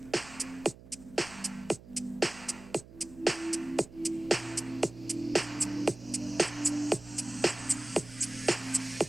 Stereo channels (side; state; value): right; noise; hum, 19 dB below the sound